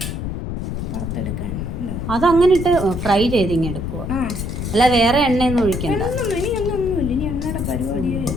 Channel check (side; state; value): left; noise; rumble, 4 dB below the sound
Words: വറുത്തെടുക്കാൻ അതങ്ങനെ ഇട്ട് ഫ്രൈ ചെയ്ത് ഇങ്ങനെ എടുക്കുക. അല്ല വേറെ എണ്ണയൊന്നും ഒഴിക്കണ്ട. ഇനി ഒന്നുമില്ല, ഇനി എണ്ണയുടെ പരിപാടിയേ